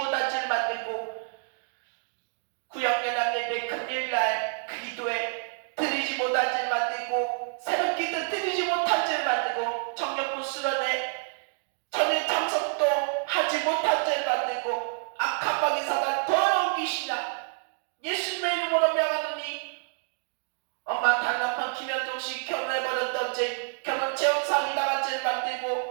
죄를 만들고 구역연합 예배 금일날 기도에 드리지 못한 죄를 만들고 새벽기도 드리지 못한 죄를 만들고 청년부 수련회 전에 참석도 하지 못한 죄를 만들고 악한 방의 사단 더러운 귀신아 예수님의 이름으로 명하노니 엄마 다른 남편 김현종씨 결혼해버렸던 죄 결혼 재혼 사기 당한 죄를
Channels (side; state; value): left; silent; 59 dB below the other